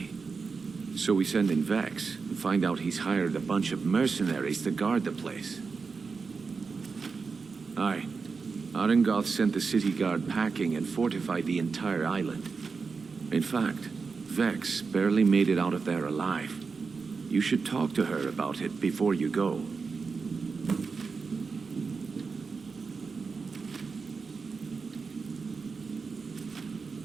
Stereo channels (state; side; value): quieter; left; 4.9 dB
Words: So we send in Vex and find out he's hired a bunch of mercenaries to guard the place. Aye. Arangoth sent the city guard packing and fortified the entire island. In fact, Vex barely made it out of there alive. You should talk to her about it before you go.